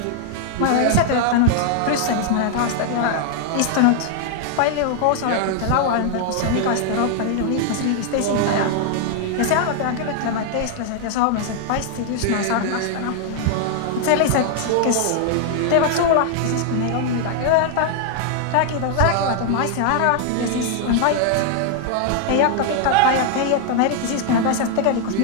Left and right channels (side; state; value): both; different; correlation 0.00